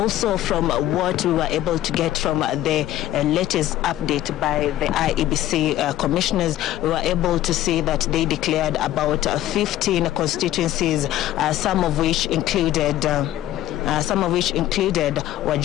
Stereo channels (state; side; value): quieter; right; 13.6 dB